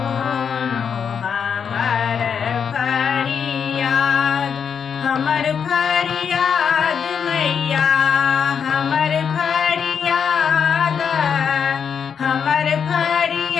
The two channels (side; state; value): right; quieter; 7.0 dB